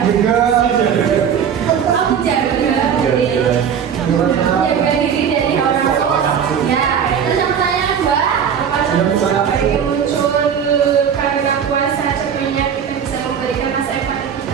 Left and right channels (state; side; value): quieter; left; 7.8 dB